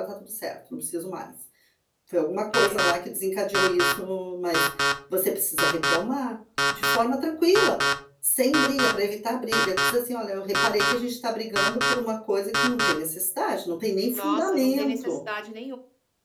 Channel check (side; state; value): both; identical; correlation 1.00